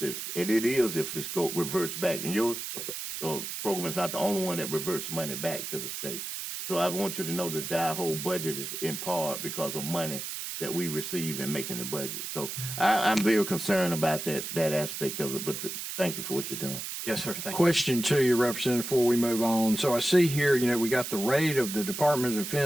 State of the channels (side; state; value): right; noise; hiss, 6 dB below the sound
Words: and it is if it reverts back. And your program is not the only one that reverts money back to the state. So I want you to know that our whole budget is in part because of money that we receive in making the budget. So I'm very concerned about that aspect of it, but thank you for what you're doing. Yes, sir. Thank you. Question to you, Representative, before we move on. So I see here, we got the rate of the Department of